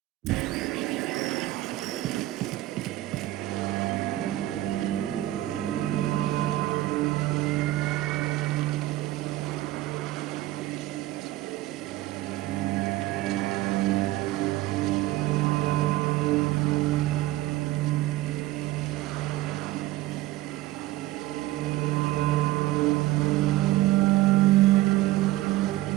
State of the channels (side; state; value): left; quieter; 16.3 dB